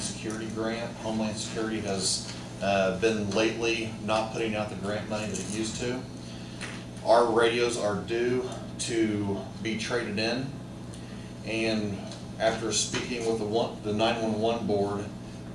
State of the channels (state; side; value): identical; both; correlation 1.00